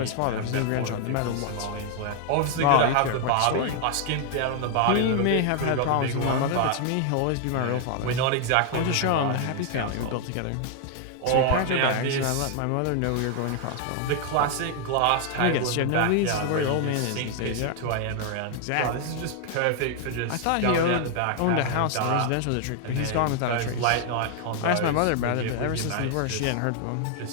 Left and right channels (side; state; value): both; different; correlation 0.00